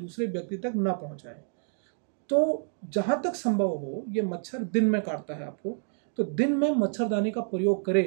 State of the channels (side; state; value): left; silent; 59 dB below the other